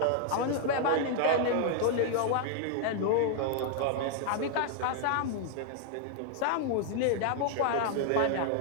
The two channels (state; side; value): different; both; correlation 0.00